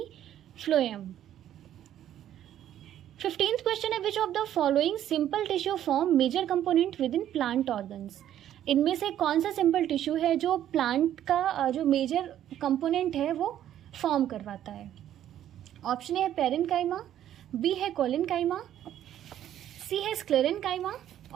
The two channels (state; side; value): quieter; left; 11.3 dB